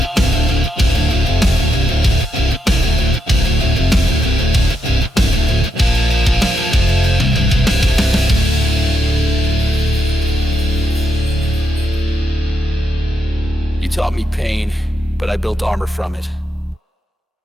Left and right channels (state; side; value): normal; both; correlation 0.82